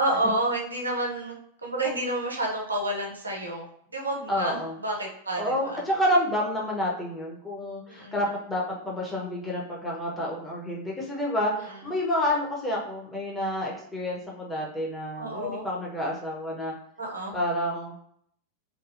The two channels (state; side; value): normal; both; correlation -0.03